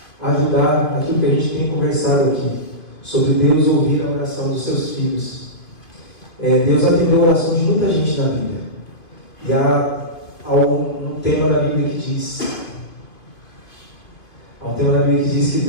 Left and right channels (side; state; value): right; late; 2.5 ms